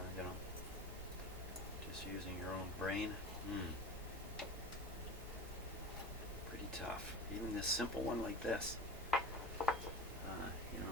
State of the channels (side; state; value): both; normal; correlation 0.32